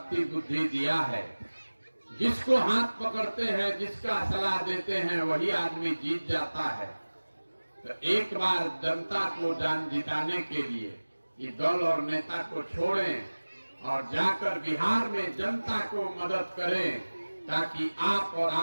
बुद्धि दिया है, जिसको हाथ पकड़ते हैं, जिसका सलाह देते हैं, वही आदमी जीत जाता है। तो एक बार जनता को जान जिताने के लिए ये दल और नेता को छोड़ें और जाकर बिहार में जनता को मदद करें ताकि आप और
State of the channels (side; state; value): both; inverted; correlation -1.00